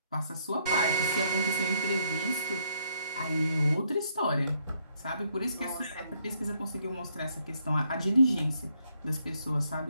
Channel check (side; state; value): both; inverted; correlation -0.72